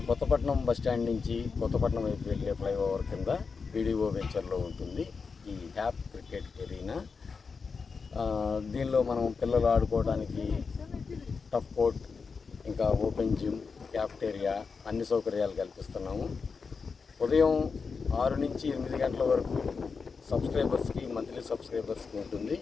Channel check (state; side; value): quieter; right; 5.1 dB